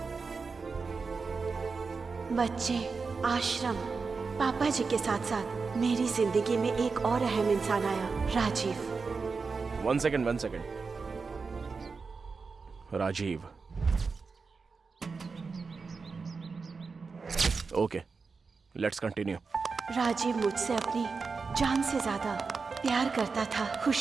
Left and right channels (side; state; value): left; quieter; 4.7 dB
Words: बच्चे, आश्रम, पापा जी के साथ साथ मेरी जिंदगी में एक और अहम इंसान आया, Rajiv. 1 second. Rajiv. Okay, let's continue. Rajiv मुझसे अपनी जान से ज्यादा प्यार करता था।